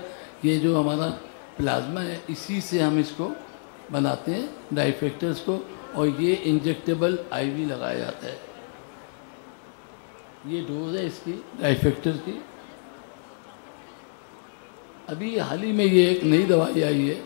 یہ جو ہمارا پلازما ہے اسی سے ہم اس کو بناتے ہیں ڈرائی فیکٹرز کو، اور یہ انجیکٹیبل IV لگایا جاتا ہے۔ یہ ڈوز ہے اس کی ڈرائی فیکٹر کی۔ ابھی حال ہی میں یہ ایک نئی دوائی آئی ہے،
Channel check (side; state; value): right; silent; digital silence